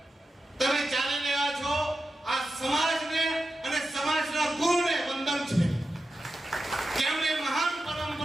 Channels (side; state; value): both; normal; correlation 0.91